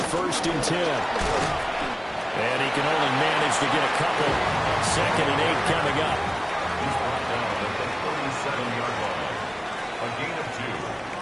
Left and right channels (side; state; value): both; identical; correlation 1.00